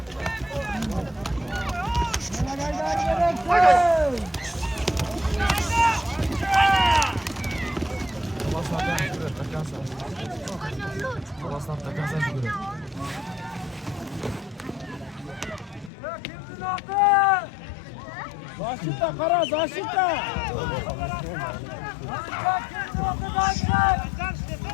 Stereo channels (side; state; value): right; drops out; at 15.9 s